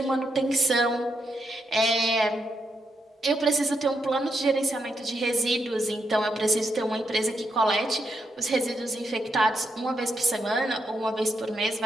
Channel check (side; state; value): both; normal; correlation 0.81